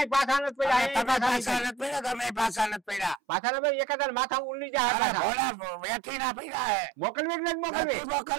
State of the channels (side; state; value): left; drops out; at 3.2 s